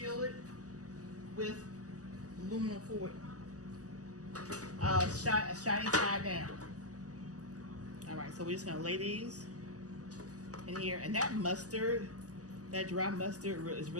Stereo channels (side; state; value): left; late; 0.67 ms